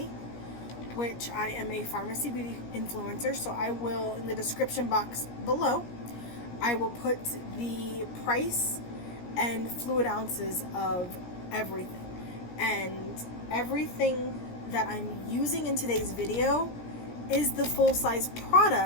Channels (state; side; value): late; right; 17 ms